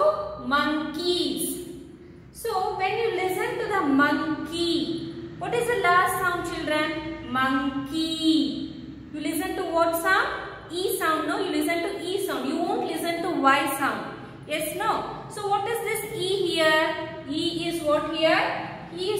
monkeys. So when you listen to the monkey, what is the last sound children? Monkey. You listen to what sound? E sound. No, you listen to E sound. You won't listen to Y sound. Yes, no. So what is this E here? E is what here? E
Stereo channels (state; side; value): identical; both; correlation 1.00